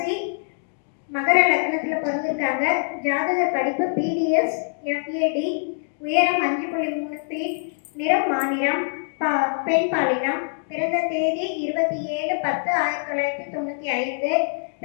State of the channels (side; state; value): right; silent; digital silence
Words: மகர லக்னத்தில் பிறந்திருக்காங்க. ஜாதக படிப்பு பிடிஎஸ் எஃப்ஏடி, உயரம் 5.3 ஃபீட், நிறம் மாநிறம், பெண் பாலினம். பிறந்த தேதி 27/10/1995.